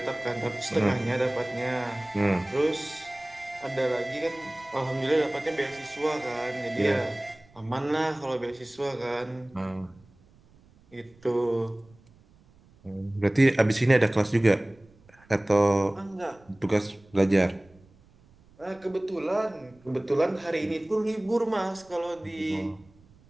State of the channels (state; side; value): noise; right; rumble, 28 dB below the sound